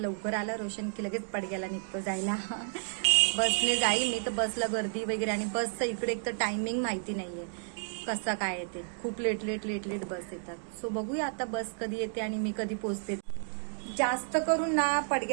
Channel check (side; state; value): left; silent; digital silence